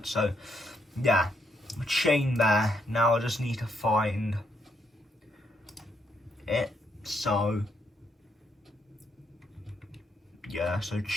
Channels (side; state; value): both; normal; correlation 0.76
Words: So yeah, chain there. Now I just need to find it. So yeah, so